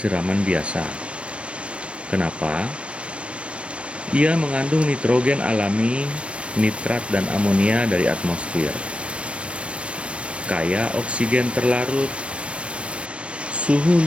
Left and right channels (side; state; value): left; late; 0.060 ms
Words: biasa. Kenapa? Ia mengandung nitrogen alami, nitrat dan amonia dari atmosfer. Kaya oksigen terlarut, suhu